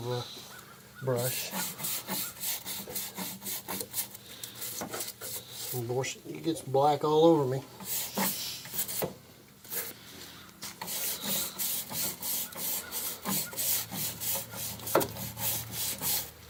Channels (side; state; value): both; identical; correlation 1.00